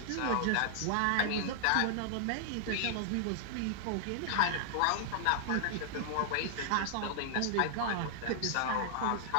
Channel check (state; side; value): different; both; correlation -0.01